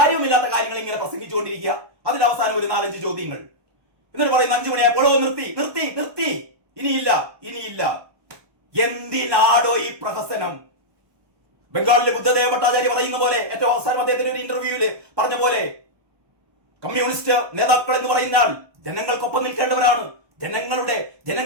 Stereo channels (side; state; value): left; late; 1.2 ms